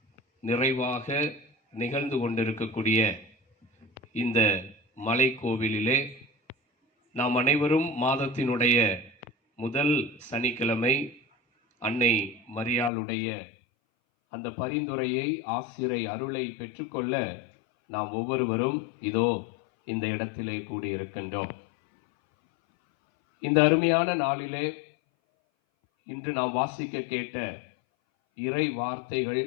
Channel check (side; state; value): right; drops out; at 12.9 s